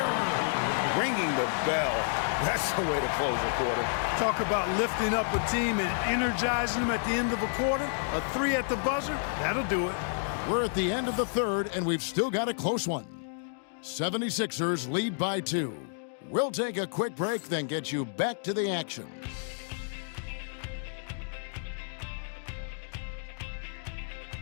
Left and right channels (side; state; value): right; silent; digital silence